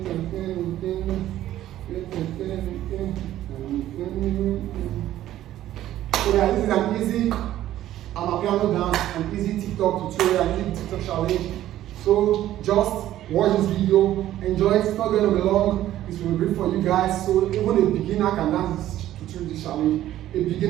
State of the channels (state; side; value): quieter; left; 13.2 dB